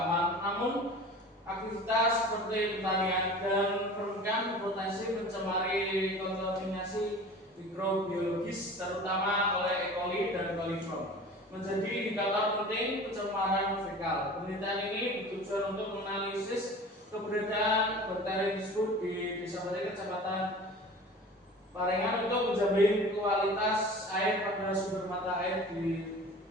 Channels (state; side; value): normal; both; correlation 0.40